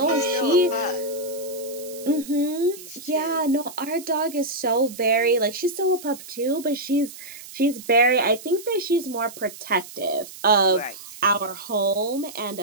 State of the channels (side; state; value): right; noise; hiss, 15 dB below the sound